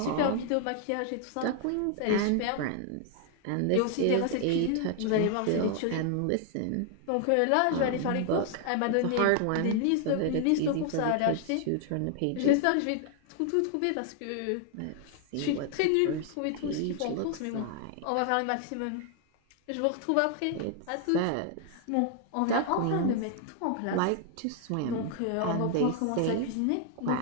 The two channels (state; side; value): different; both; correlation 0.00